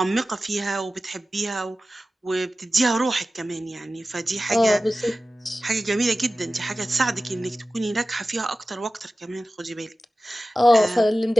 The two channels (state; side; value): normal; both; correlation 0.95